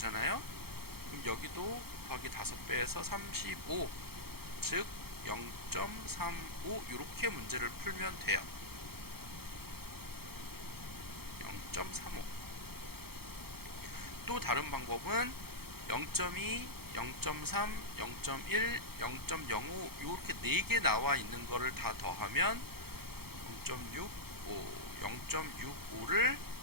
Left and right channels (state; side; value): late; left; 0.95 ms